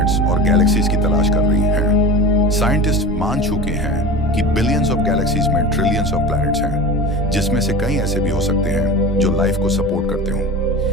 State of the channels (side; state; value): both; normal; correlation 0.32